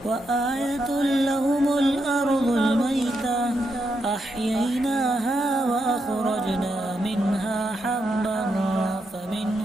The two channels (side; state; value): both; normal; correlation 0.82